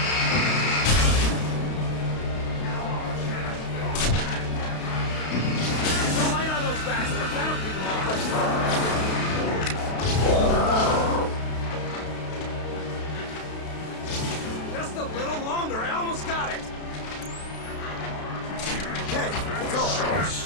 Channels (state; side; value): late; right; 32 ms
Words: Bastard, that'll keep them off. Just a little longer, I almost got it. Okay, it's over.